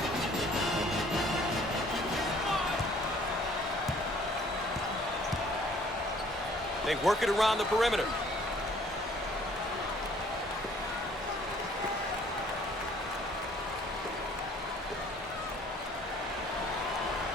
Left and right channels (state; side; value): normal; both; correlation 0.57